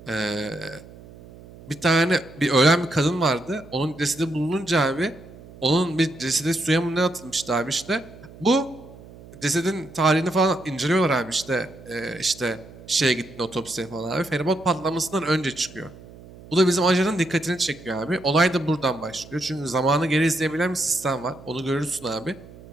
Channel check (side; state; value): right; noise; hum, 19 dB below the sound